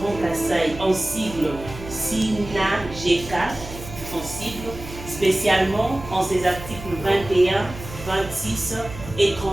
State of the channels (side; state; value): right; noise; hum, 13 dB below the sound